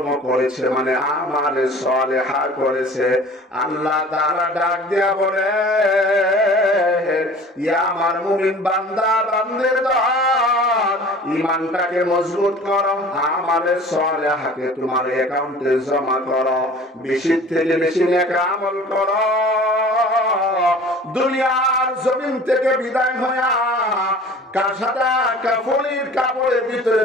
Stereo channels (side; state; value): both; normal; correlation 0.45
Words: করেছে, মানে আমালে সালেহা করেছে, আল্লাহ তাআলা ডাক দেয়া বলে, ইয়া আমার মুমিন বান্দা বান্দের দল, ঈমানটাকে মজবুত করো, আমালে সালেহাকে তোমার অ্যাকাউন্টে জমা করো, বেশি থেকে বেশি নেক আমল করো। দুনিয়ার জমিন থেকে বিদায় হয়ে কাসাদা কাফনের কাপড়ের ভিতরে